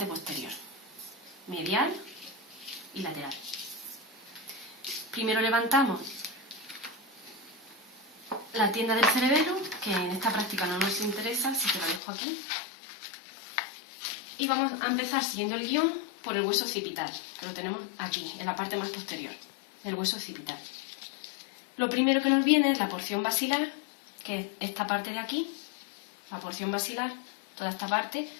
posterior, medial y lateral. Primero levantamos la tienda del cerebelo, que en esta práctica no nos interesa, así que la dejo aquí. Y vamos a empezar siguiendo el guión por el hueso occipital, que lo tenemos aquí, en la parte más posterior, el hueso occipital. Lo primero que nos viene es la porción basilar, que es esta parte de aquí, la porción basilar, toda esta parte,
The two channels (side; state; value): right; drops out; at 12.0 s